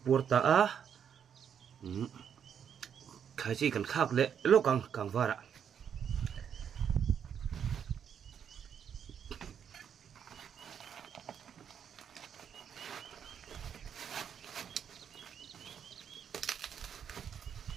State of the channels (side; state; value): left; quieter; 8.2 dB